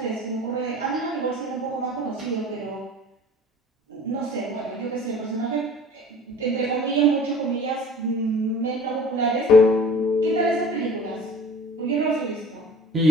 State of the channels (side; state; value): both; normal; correlation 0.46